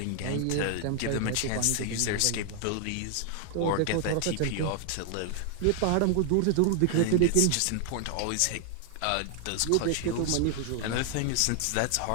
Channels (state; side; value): different; both; correlation 0.00